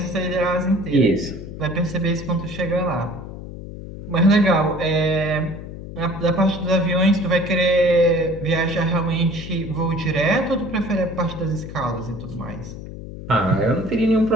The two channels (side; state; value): left; noise; hum, 11 dB below the sound